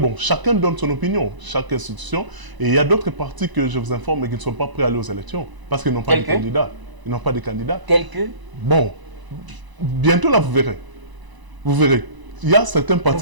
chacun donne son opinion, chaque institution. Et il y a d'autres partis que je vous informe, mais qui ne sont pas prêts à aller aux élections. Parce qu'ils n'ont pas de candidats. Ils n'ont pas de candidats. Tels que? Bon, bientôt là, vous verrez. Vous verrez. Il y a certains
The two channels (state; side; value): late; left; 1.0 ms